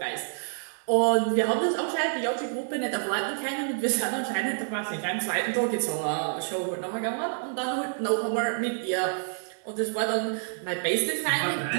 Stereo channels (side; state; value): left; silent; 59 dB below the other